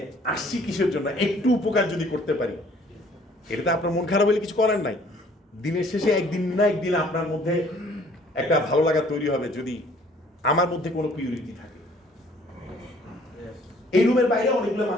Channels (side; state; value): both; normal; correlation 0.58